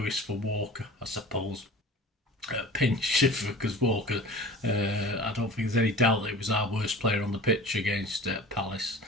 for Walker, I suppose. Pinch, because Walker, I don't think there's any doubt that he was our worst player on the pitch against Palace.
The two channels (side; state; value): both; normal; correlation 0.40